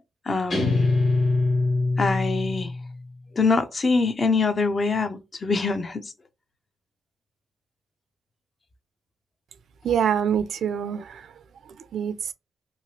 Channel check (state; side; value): normal; both; correlation 0.78